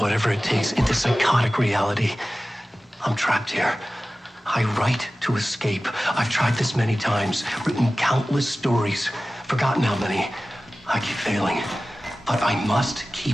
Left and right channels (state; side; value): normal; both; correlation 0.96